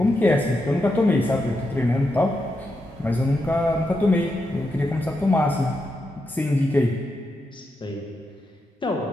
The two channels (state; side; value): normal; both; correlation 0.85